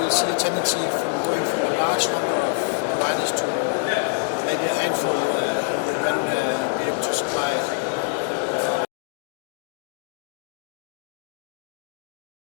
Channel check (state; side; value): silent; right; digital silence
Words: see a tendency from going from a large number of providers to maybe a handful who would then be able to supply it.